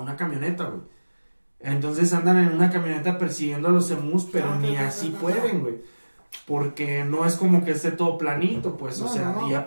una camioneta, güey. Entonces andan en una camioneta persiguiendo a los emus, pero ni así pueden, güey. Porque no es como que esté todo planito, pues, o sea, y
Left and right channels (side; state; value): both; inverted; correlation -1.00